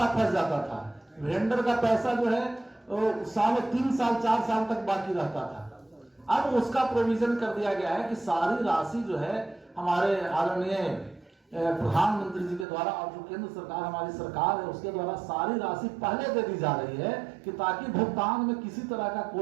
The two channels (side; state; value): left; drops out; at 12.7 s